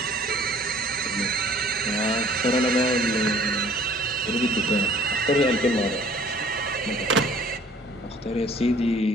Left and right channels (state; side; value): normal; both; correlation 0.54